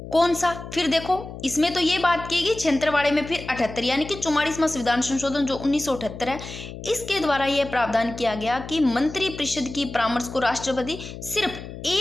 कौन सा, फिर देखो इसमें तो ये बात की गई 76 वाले में, फिर 78 यानी कि 44वां संविधान संशोधन जो 1978 है, इसके द्वारा यह प्रावधान किया गया कि मंत्री परिषद की परामर्श को राष्ट्रपति सिर्फ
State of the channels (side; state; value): left; noise; hum, 12 dB below the sound